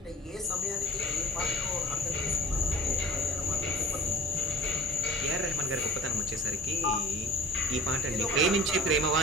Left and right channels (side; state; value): both; normal; correlation 0.42